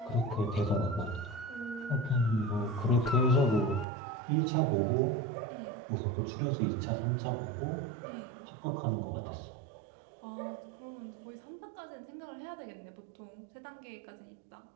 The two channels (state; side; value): drops out; left; at 3.9 s